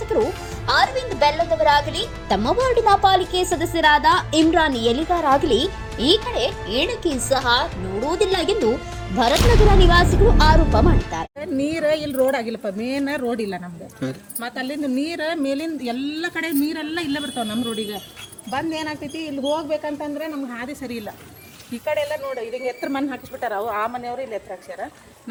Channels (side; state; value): both; identical; correlation 1.00